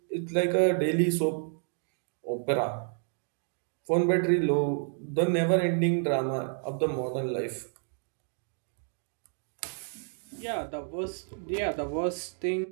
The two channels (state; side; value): silent; left; 58 dB below the other